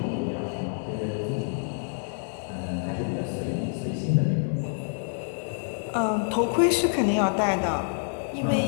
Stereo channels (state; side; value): silent; right; 60 dB below the other